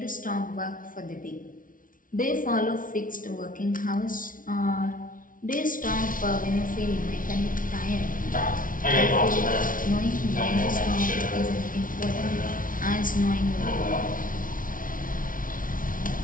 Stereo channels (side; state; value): right; late; 0.39 ms